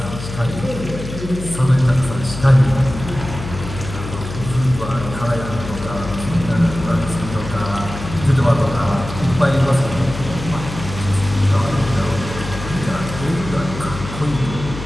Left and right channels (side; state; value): left; noise; hum, 9 dB below the sound